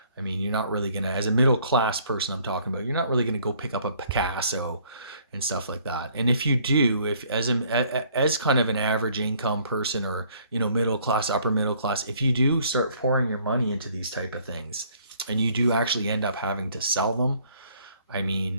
I mean, you're not really gonna, as a middle class person, I'm talking about, you're not really gonna go pick up a Picasso and stuff like that. And if you do, if as kind of an average income person, or middle class, upper middle class, if you do start pouring your money into these type of things, and you do actually end up having to sell them, I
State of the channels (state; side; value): inverted; both; correlation -0.61